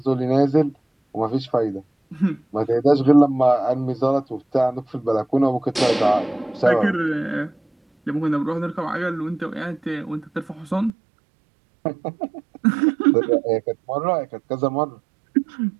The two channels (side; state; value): left; drops out; at 10.9 s